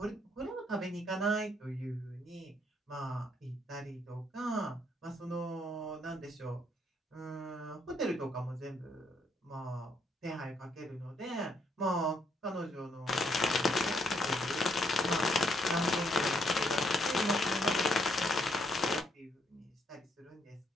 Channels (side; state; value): both; normal; correlation 0.71